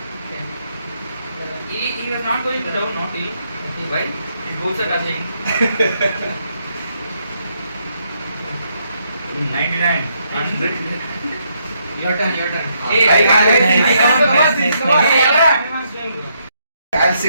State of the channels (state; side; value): inverted; both; correlation -0.75